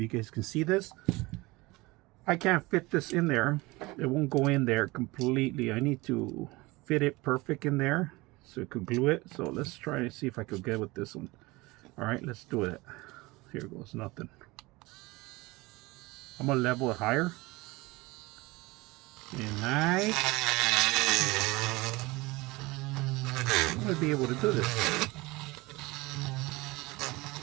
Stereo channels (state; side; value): quieter; left; 22.2 dB